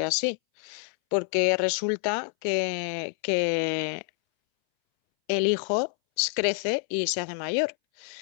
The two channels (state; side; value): silent; right; 60 dB below the other